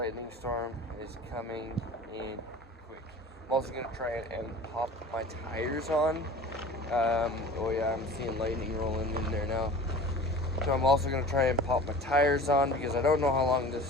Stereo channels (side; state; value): both; normal; correlation 0.40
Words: storm is coming in quick. I'm also going to try and pop my tires on. Oh yeah, I'm seeing lightning rolling in there now. So I'm also going to try and pop my tires on because I don't know how long